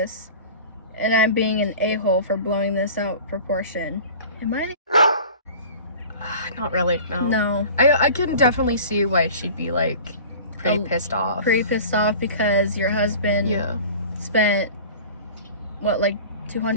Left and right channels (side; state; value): both; inverted; correlation -0.40